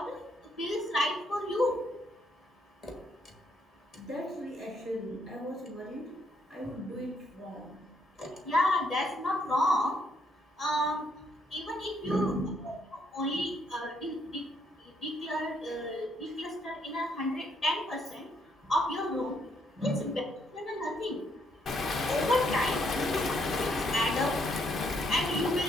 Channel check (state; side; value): normal; both; correlation 0.72